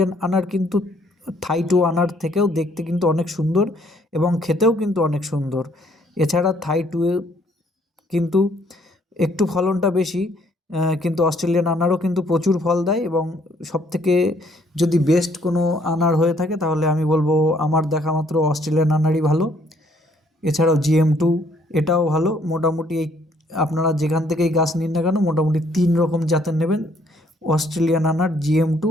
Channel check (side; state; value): both; normal; correlation 0.65